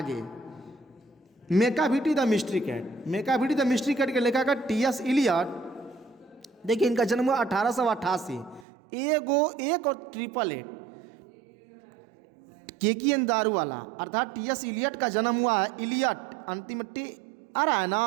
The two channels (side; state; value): left; drops out; at 8.7 s